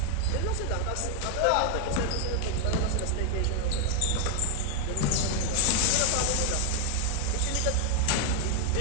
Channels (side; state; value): both; different; correlation 0.00